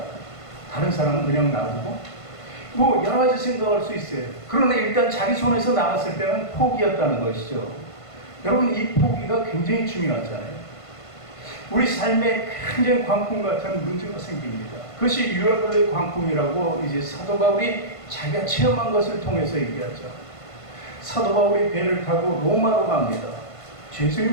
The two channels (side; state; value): right; late; 1.5 ms